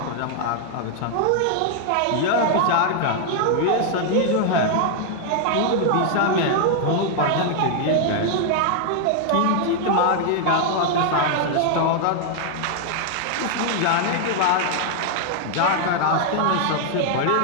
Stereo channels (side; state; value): both; different; correlation 0.00